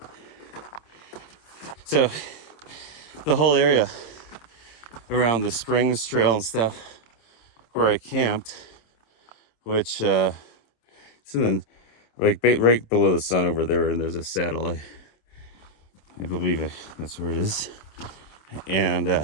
So the whole area around the Springs Trail and stuff where I camped, which it's in the, like right below the sun over there, and there's a saddle. I believe that's where it is. And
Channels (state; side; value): late; right; 27 ms